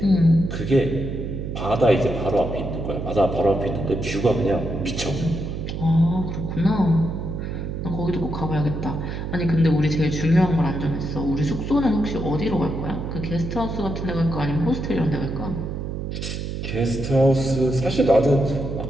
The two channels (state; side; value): noise; right; hum, 5 dB below the sound